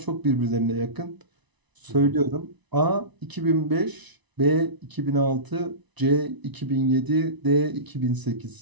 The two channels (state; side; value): late; left; 1.0 ms